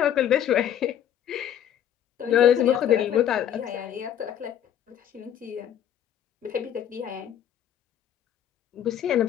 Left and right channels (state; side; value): quieter; right; 10.2 dB